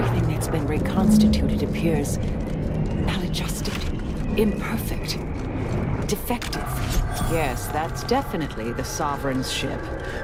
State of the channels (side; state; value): both; identical; correlation 1.00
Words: that's been reconstituted appears maladjusted, imperfect, defective. Yes, that's definitely the Sovereign's ship.